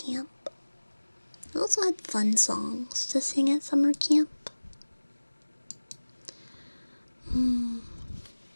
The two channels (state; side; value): inverted; both; correlation -1.00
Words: I also had fun songs to sing at summer camp.